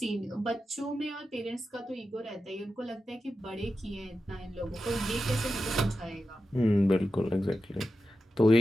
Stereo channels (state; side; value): normal; both; correlation 0.91